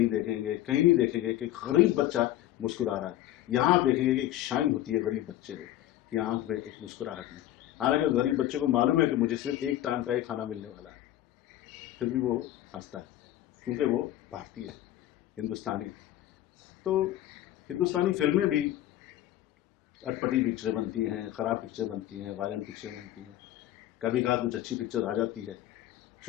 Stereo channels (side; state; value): right; quieter; 13.7 dB